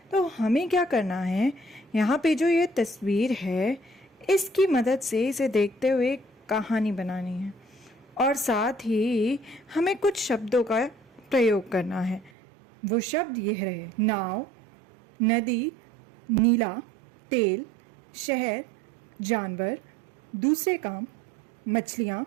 तो हमें क्या करना है, यहाँ पे जो ये तस्वीर है इसकी मदद से इसे देखते हुए कहानी बनानी है और साथ ही हमें कुछ शब्दों का प्रयोग करना है। वो शब्द ये रहे: नाव, नदी, नीला, तेल, शहर, जानवर, दूसरे काम, मछलियाँ,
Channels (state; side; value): drops out; left; at 12.3 s